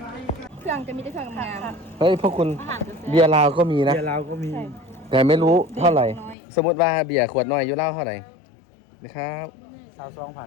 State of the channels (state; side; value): drops out; right; at 6.4 s